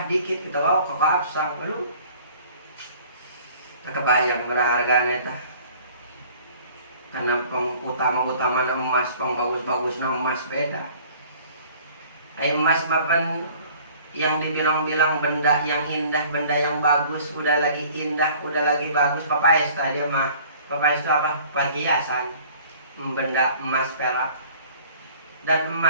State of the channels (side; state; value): both; inverted; correlation -0.51